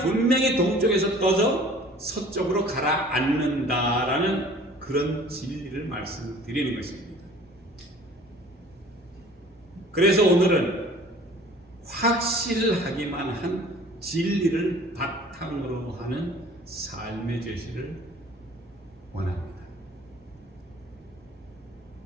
동쪽에서 떠서 서쪽으로 가라앉는다라는 그런 진리를 말씀드리는 것입니다. 그래서 오늘은 확실하기만 한 진리를 바탕으로 하는 삶의 제시를 원합니다.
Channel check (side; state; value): both; normal; correlation 0.49